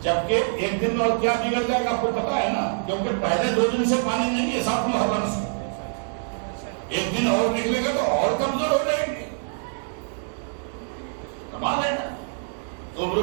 جبکہ 1 دن اور کیا بگڑ جائے گا آپ کو پتا ہے نا، کیونکہ پہلے 2 دن سے پانی نہیں ہے 7 محرم سے، 1 دن اور نکلے گا تو اور کمزور ہو جائیں گے۔ کمال ہے نا۔ تو عمرو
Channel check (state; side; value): silent; left; digital silence